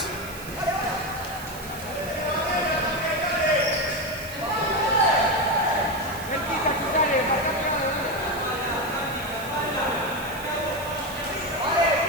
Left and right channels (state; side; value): noise; right; hiss, 15 dB below the sound